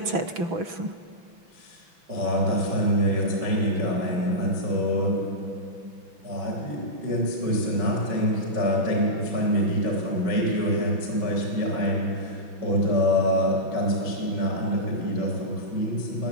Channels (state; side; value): late; left; 5.9 ms